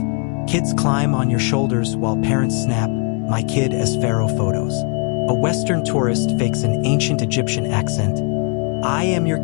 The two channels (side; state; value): right; quieter; 36.5 dB